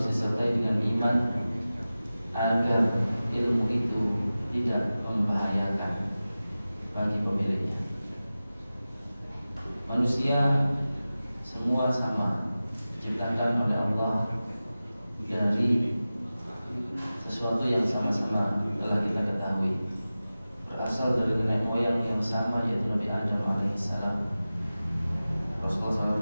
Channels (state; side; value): inverted; both; correlation -0.96